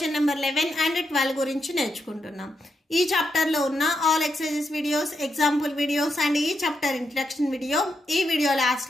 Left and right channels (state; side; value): normal; both; correlation 0.83